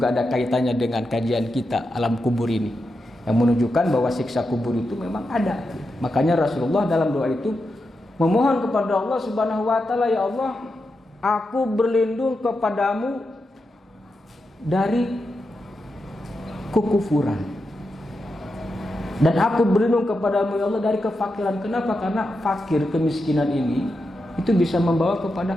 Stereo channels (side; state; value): both; normal; correlation 0.87